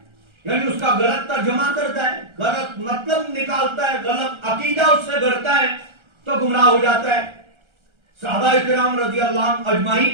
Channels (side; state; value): left; late; 1.4 ms